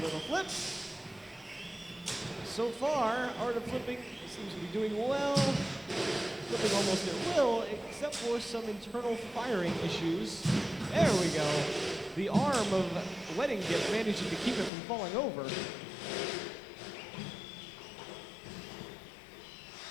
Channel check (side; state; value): right; drops out; at 14.7 s